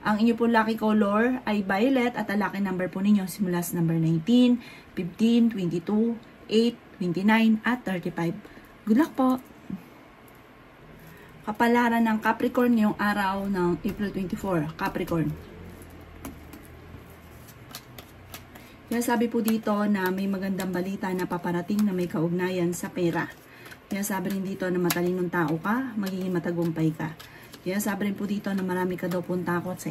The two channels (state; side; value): identical; both; correlation 1.00